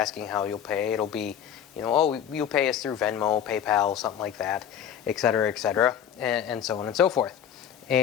how you'll pay, it'll be, you know, oh, you'll pay us through Venmo, PayPal, something like that, etc., and so on and so forth.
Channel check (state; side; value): quieter; right; 9.3 dB